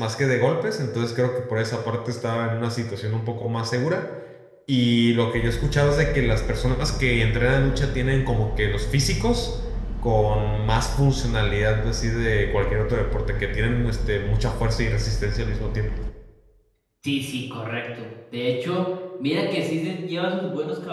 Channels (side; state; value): both; identical; correlation 1.00